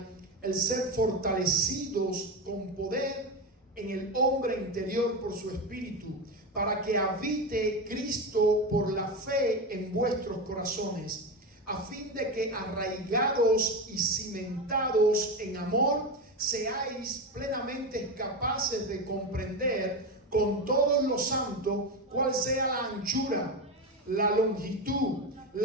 el ser fortalecidos con poder en el hombre interior por su espíritu, para que habite Cristo por la fe en vuestros corazones, a fin de que arraigados y cimentados en amor, seáis plenamente capaces de comprender con todos los santos cuál sea la anchura, la longitud,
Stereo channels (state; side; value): normal; both; correlation 0.17